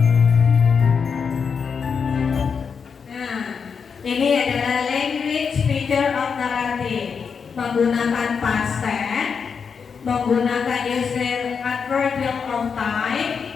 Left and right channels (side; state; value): right; quieter; 6.1 dB